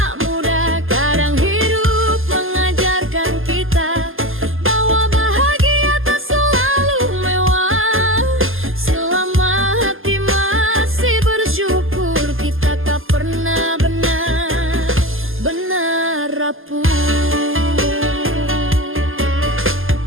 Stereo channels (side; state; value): left; late; 0.59 ms